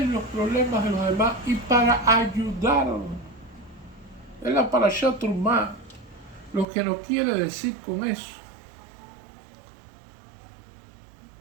los problemas de los demás y para ayudarlos. Es la Parashat Trumá lo que nos quiere decir con eso.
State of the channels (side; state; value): left; drops out; at 6.7 s